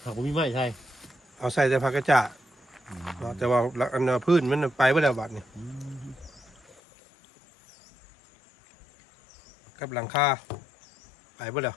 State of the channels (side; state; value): right; drops out; at 6.8 s